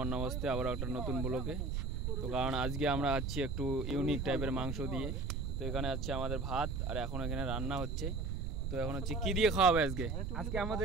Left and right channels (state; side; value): noise; right; rumble, 2 dB below the sound